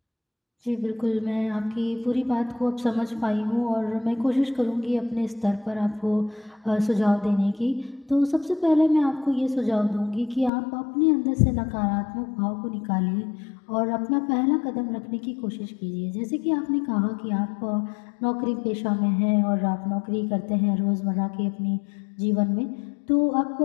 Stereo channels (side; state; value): right; drops out; at 10.5 s